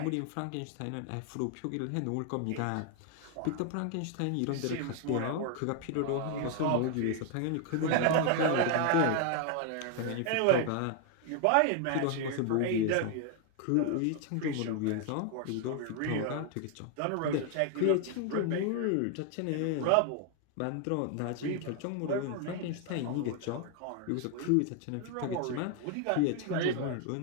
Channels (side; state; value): both; different; correlation 0.00